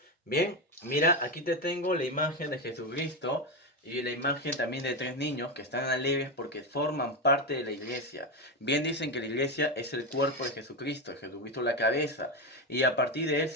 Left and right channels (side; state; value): both; normal; correlation 0.12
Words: Bien, mira, aquí te tengo la imagen de Jesucristo y la imagen también de tres niños que están alegres porque forman parte de la iglesia. Bien dicen que la iglesia es el cuerpo de Jesucristo la cabeza, y a partir de él